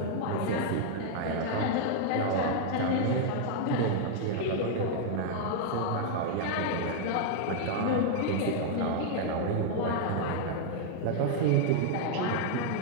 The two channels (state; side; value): different; both; correlation 0.00